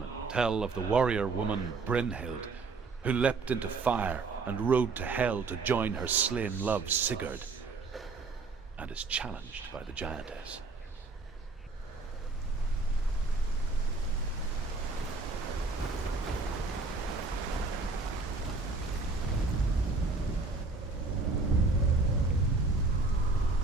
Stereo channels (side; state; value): left; quieter; 3.9 dB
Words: tell of the warrior woman Brynhild, who leapt into fire and rode to Hell to join her slain love Sigurd, and is challenged by the giantess.